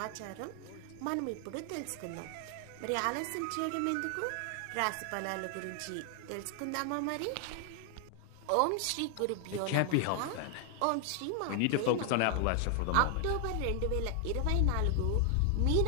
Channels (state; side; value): different; both; correlation 0.00